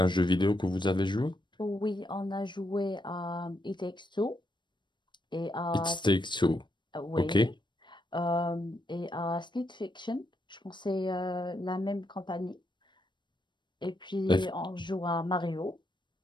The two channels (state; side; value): late; right; 0.22 ms